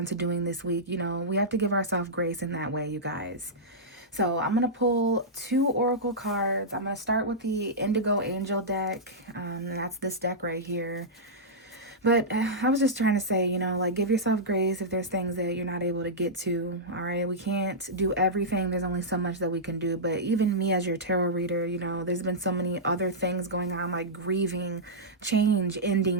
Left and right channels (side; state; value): both; normal; correlation -0.12